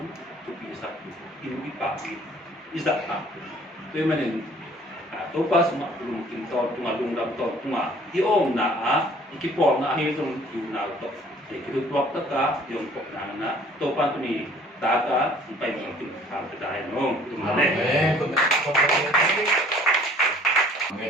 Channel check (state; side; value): normal; both; correlation 0.54